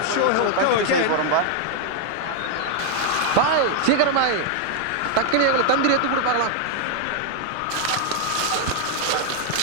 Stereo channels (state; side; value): different; both; correlation 0.00